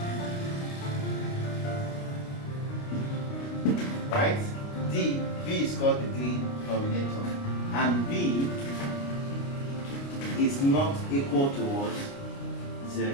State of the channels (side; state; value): right; late; 29 ms